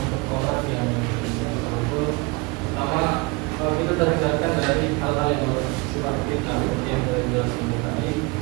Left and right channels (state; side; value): quieter; left; 26.0 dB